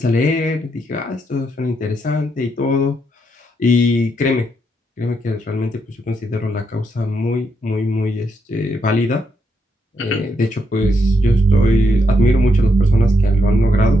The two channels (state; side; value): normal; both; correlation 0.79